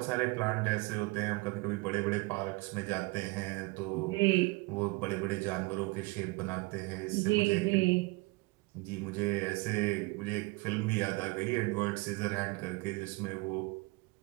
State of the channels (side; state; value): left; quieter; 24.5 dB